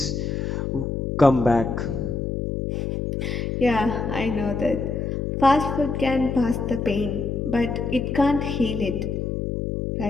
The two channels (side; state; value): left; noise; hum, 2 dB below the sound